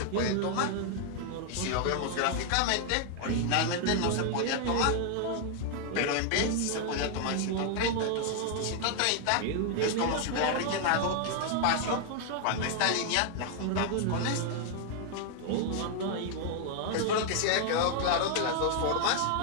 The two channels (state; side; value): different; both; correlation 0.00